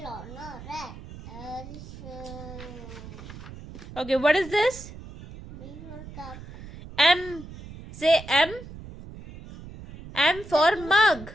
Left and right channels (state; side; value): noise; right; rumble, 14 dB below the sound